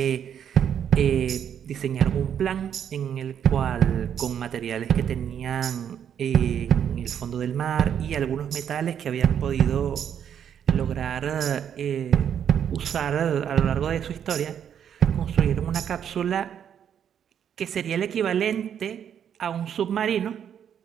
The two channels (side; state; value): left; quieter; 8.8 dB